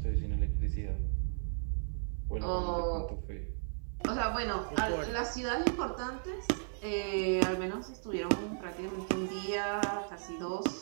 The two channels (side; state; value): left; silent; digital silence